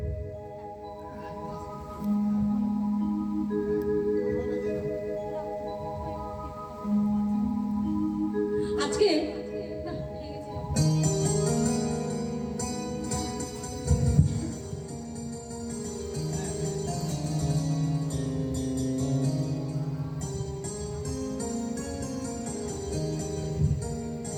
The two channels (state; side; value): identical; both; correlation 1.00